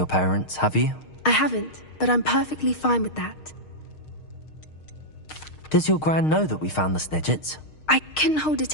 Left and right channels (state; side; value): late; right; 6.5 ms